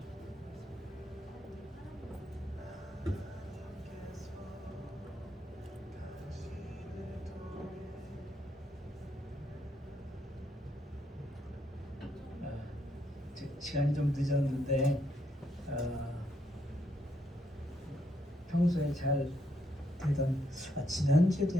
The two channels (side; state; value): both; normal; correlation 0.76